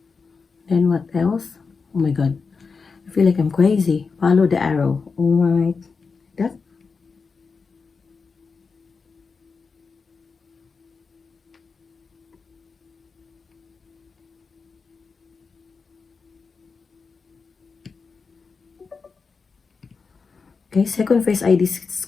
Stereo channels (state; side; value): quieter; right; 4.9 dB